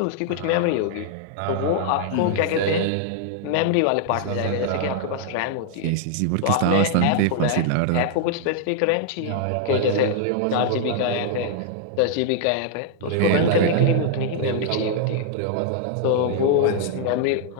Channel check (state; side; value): different; both; correlation -0.01